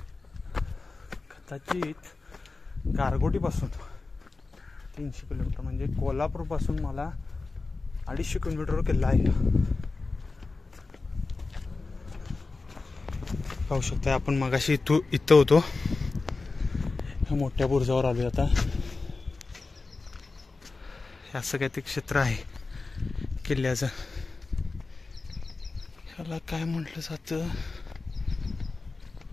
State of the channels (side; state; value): right; quieter; 3.8 dB